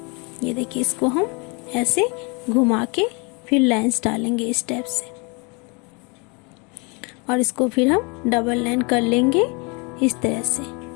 ये देखिए इसको हम ऐसे घुमा के फिर लाइंस डालेंगे इस टाइप से, और इसको फिर हम डबल लाइन कर लेंगे इस तरह से।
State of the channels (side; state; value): right; quieter; 30.7 dB